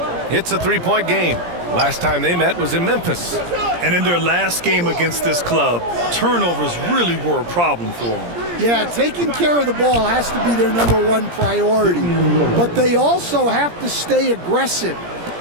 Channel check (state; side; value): late; left; 17 ms